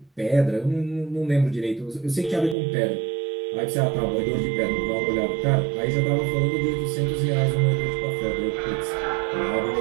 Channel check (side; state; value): left; drops out; at 2.6 s